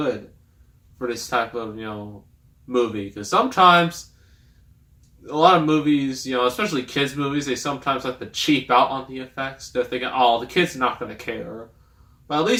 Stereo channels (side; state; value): both; identical; correlation 1.00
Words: for this type of, movie. Because sometimes, a lot of movies, especially kids' movies, they sometimes like to cheap out on the effects. They're thinking, oh, the kids are not going to care. But at